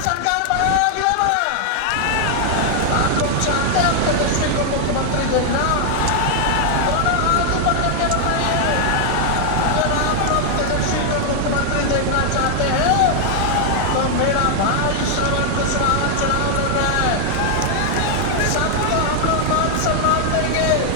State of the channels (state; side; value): different; both; correlation 0.00